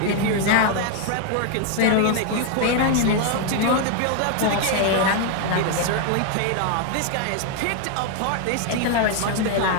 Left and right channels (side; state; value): both; different; correlation 0.00